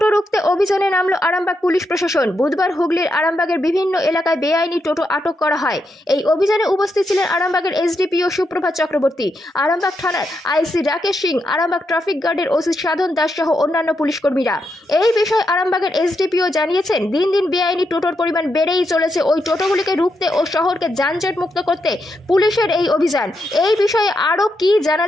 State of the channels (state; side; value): normal; both; correlation 0.83